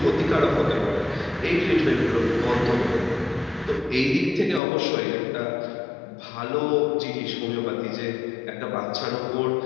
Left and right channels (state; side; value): drops out; right; at 4.6 s